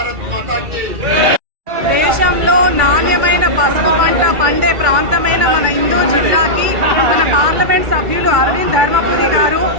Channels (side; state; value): left; late; 2.4 ms